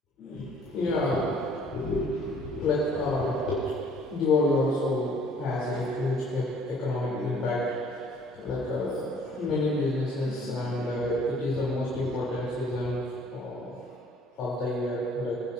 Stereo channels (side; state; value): both; normal; correlation 0.58